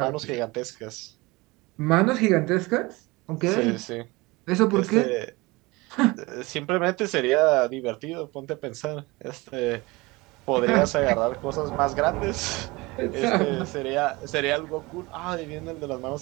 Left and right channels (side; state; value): left; quieter; 23.2 dB